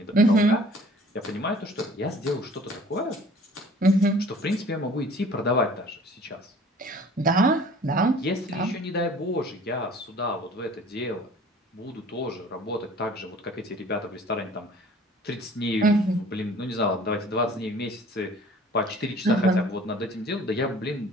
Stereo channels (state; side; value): normal; both; correlation 0.49